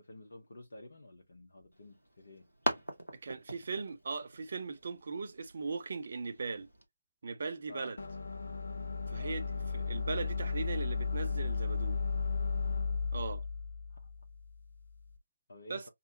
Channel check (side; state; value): both; inverted; correlation -0.84